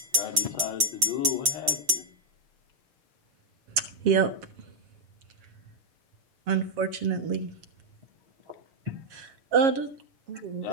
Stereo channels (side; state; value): left; late; 6.7 ms